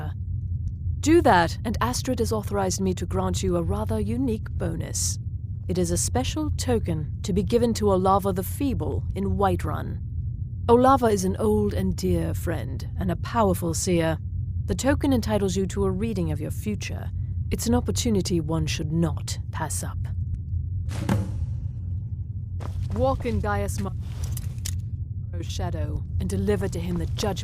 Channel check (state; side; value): identical; both; correlation 1.00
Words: Do that, and Astrid has authorized me to grant you a rather unique bonus. It is a special token to be given to Olava the Feeble in Whiterun. Olava is an old and dear friend, and a powerful seer. The token entitles you to a reading of your future. It's an opportunity one should not pass up. Walk in Gaius Morrow's shadow and deliver to him the